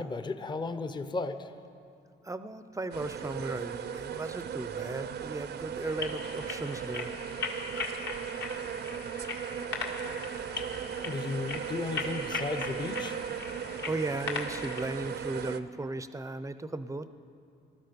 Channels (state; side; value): normal; both; correlation 0.44